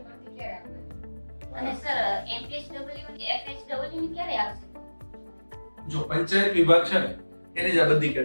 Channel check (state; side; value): inverted; both; correlation -1.00